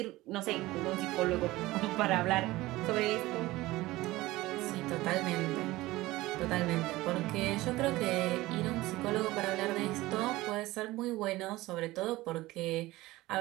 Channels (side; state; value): left; quieter; 18.5 dB